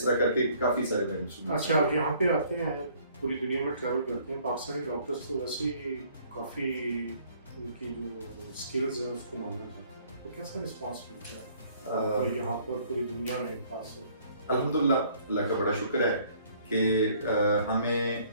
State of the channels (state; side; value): inverted; both; correlation -0.60